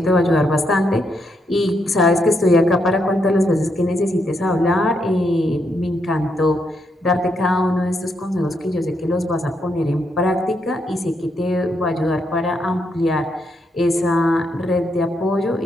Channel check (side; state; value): both; normal; correlation 0.79